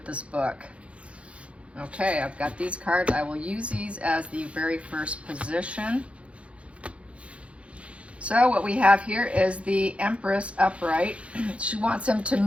this book? Okay, I've got these cards. I will use these as the very first position. So what we have here is the Empress upright. She wants him to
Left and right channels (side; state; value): left; late; 0.062 ms